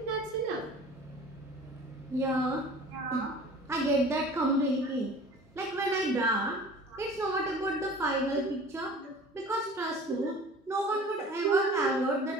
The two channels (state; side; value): normal; both; correlation 0.44